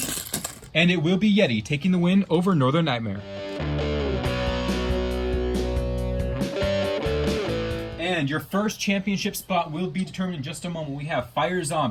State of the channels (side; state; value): both; identical; correlation 1.00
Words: And it will be Yeti taking the win over Northern Nightmare. And your first championship spot will be determined in just a moment. We have Fire